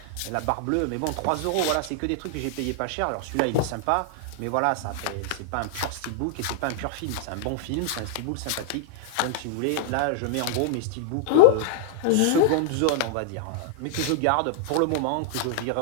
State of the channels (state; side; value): different; both; correlation -0.01